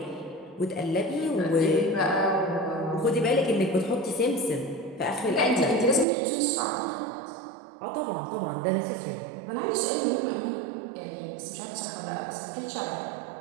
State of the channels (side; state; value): left; drops out; at 6.1 s